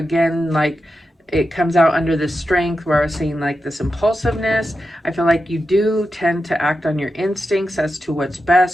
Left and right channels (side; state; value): both; normal; correlation 0.89